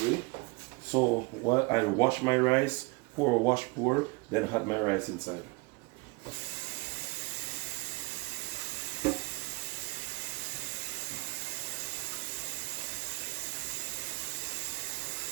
So while I wash my rice, pour, then add my rice inside.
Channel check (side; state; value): left; quieter; 26.1 dB